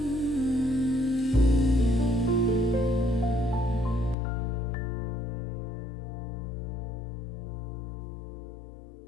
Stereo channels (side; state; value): right; drops out; at 4.2 s